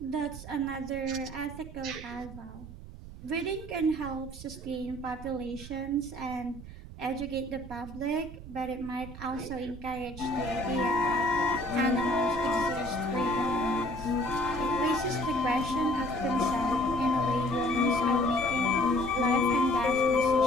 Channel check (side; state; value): right; noise; rumble, 13 dB below the sound